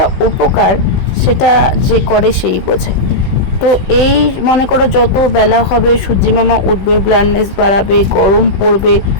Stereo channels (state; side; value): late; right; 16 ms